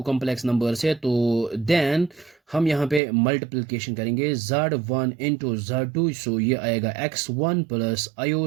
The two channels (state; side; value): drops out; left; at 3.0 s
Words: कॉम्प्लेक्स नंबर्स है, तो देन हम यहाँ पे मल्टीप्लिकेशन करेंगे z1 इंटू z2। सो ये आएगा x1 plus